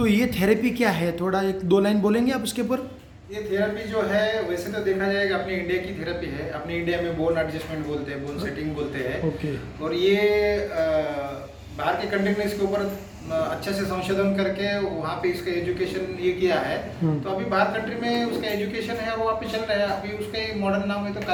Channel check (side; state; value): both; identical; correlation 1.00